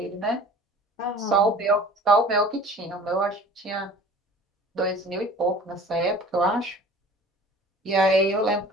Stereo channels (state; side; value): normal; both; correlation 0.44